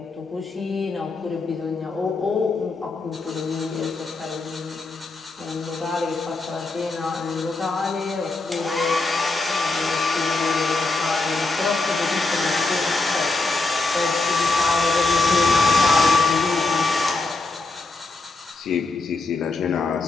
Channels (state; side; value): quieter; right; 3.5 dB